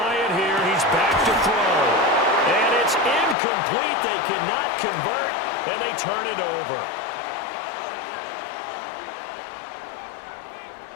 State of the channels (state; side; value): drops out; right; at 3.4 s